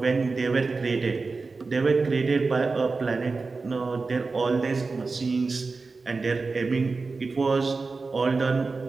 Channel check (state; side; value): quieter; left; 4.1 dB